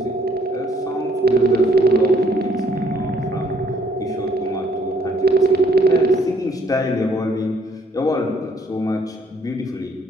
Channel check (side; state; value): both; normal; correlation 0.65